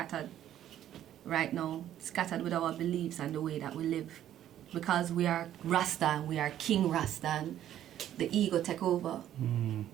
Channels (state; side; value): quieter; left; 11.6 dB